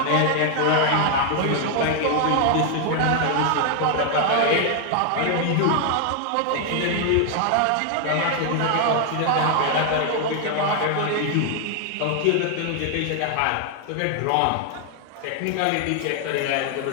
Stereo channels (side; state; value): both; different; correlation 0.00